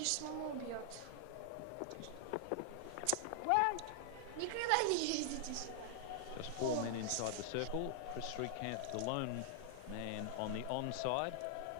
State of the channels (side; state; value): both; different; correlation -0.01